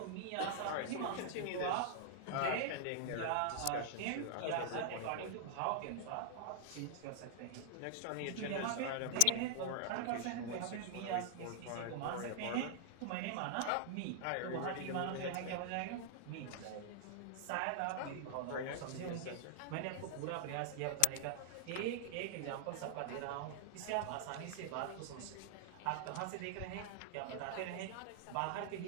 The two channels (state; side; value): different; both; correlation -0.01